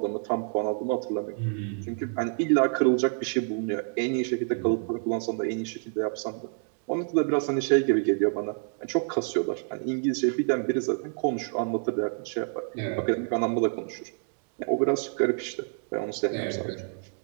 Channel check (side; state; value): left; silent; 59 dB below the other